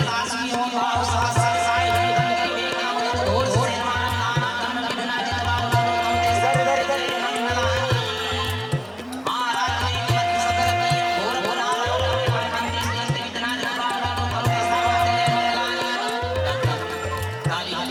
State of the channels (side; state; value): both; identical; correlation 1.00